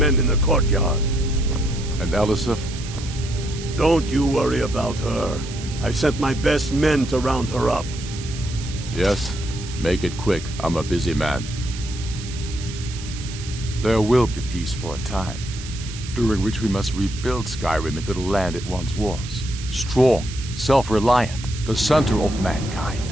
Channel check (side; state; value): right; noise; hiss, 13 dB below the sound